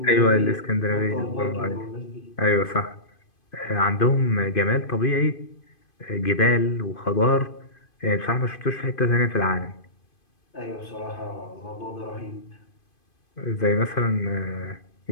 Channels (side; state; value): right; late; 2.5 ms